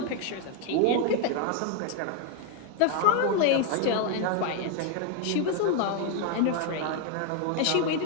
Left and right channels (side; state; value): both; different; correlation 0.00